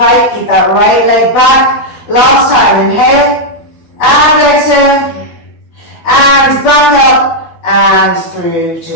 Keep that right leg back. Last time, inhale and exhale. And back up and through to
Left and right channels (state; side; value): late; right; 12 ms